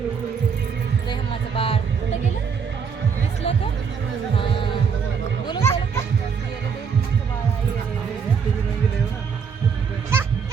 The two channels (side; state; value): left; quieter; 6.2 dB